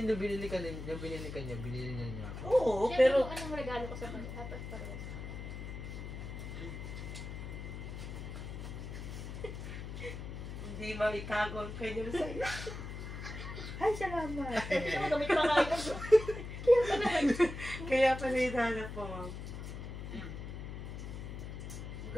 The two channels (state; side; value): noise; left; hum, 8 dB below the sound